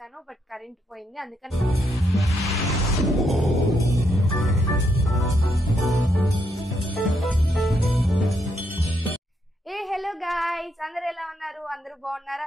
బట్ కరెంట్ పోయింది అందుకని. హలో గాయ్స్, అందరూ ఎలా ఉన్నారు? అందరూ బాగున్నారా?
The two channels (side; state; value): both; normal; correlation 0.77